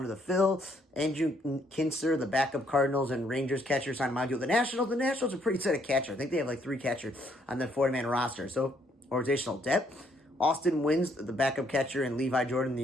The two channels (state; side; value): normal; both; correlation 0.69